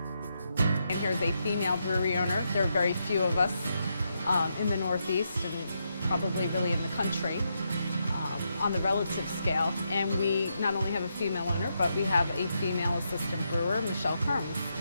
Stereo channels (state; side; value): inverted; both; correlation -0.82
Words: And here's a female brewery owner. There are very few of us in the Northeast and probably really in the country on the relative scale. And we not only have a female owner, but we have a female assistant brewer, Michelle Kerms.